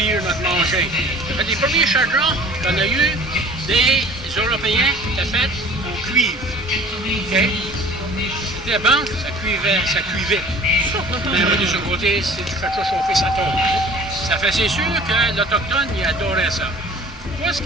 notre manger. Ça fait les premiers chagrins qu'on a eu des Européens, ça fait en cuivre. OK? C'était bon, ça cuivait. Mais de ce côté, si tu fais ça chauffer, ça tombe. Ça fait, c'est sûr que l'Autochtone, il adorait ça. Moi, ce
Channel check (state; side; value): normal; both; correlation 0.47